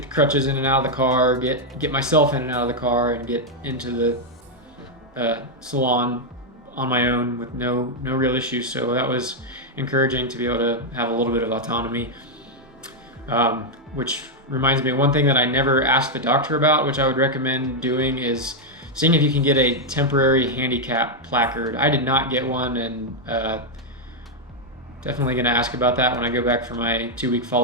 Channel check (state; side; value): normal; both; correlation 0.00